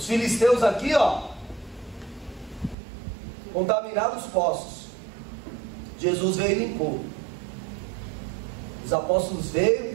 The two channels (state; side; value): drops out; left; at 2.8 s